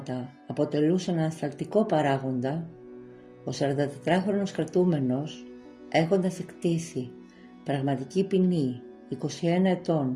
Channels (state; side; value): identical; both; correlation 1.00